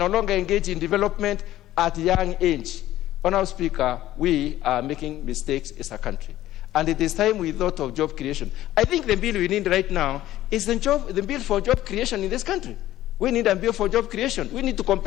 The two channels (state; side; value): quieter; right; 14.2 dB